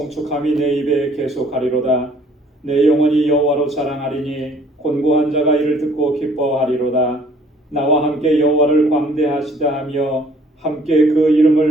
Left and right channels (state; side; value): normal; both; correlation 0.58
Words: 내 입에 계속하리로다. 내 영혼이 여호와로 자랑하리니 곤고한 자가 이를 듣고 기뻐하리로다. 나와 함께 여호와를 광대하시다 하며 함께 그